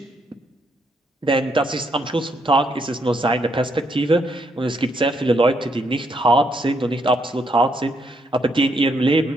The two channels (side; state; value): both; normal; correlation 0.75